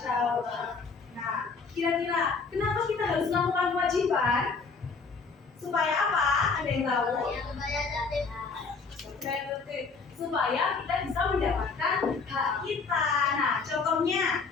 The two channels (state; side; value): quieter; right; 4.7 dB